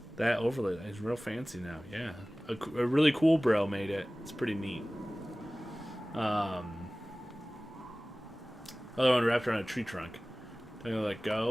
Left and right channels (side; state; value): both; normal; correlation 0.98